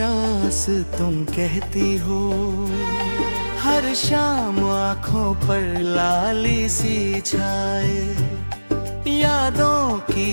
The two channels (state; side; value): inverted; both; correlation -1.00